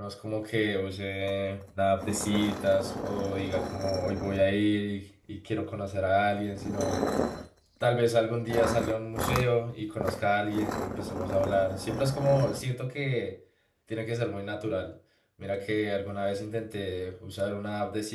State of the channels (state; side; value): identical; both; correlation 1.00